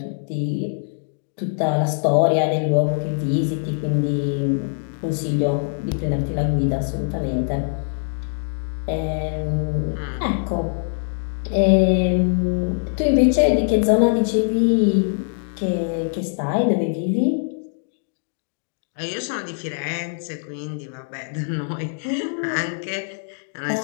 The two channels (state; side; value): silent; right; digital silence